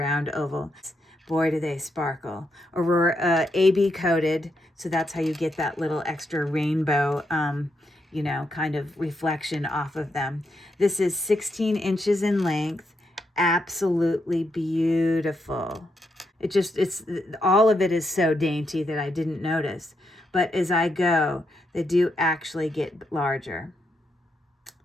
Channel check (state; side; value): normal; both; correlation 0.81